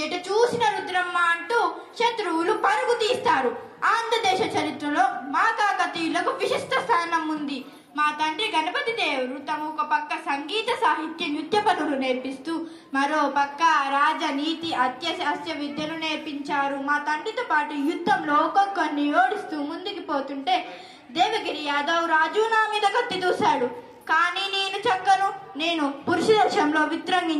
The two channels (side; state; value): both; identical; correlation 1.00